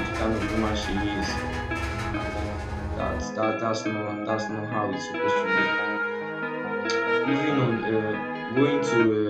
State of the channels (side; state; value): both; identical; correlation 1.00